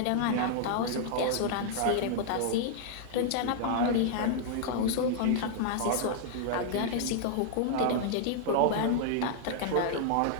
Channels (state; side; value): different; both; correlation -0.01